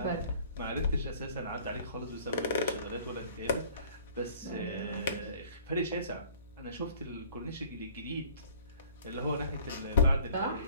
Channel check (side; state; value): both; inverted; correlation -0.51